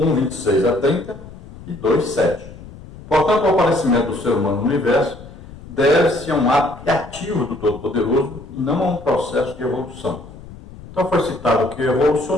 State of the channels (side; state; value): left; noise; rumble, 16 dB below the sound